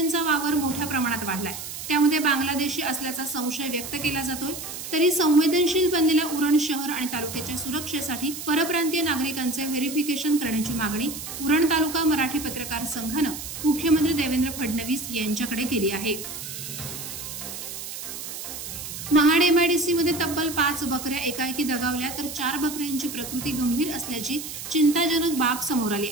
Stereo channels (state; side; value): noise; right; hiss, 8 dB below the sound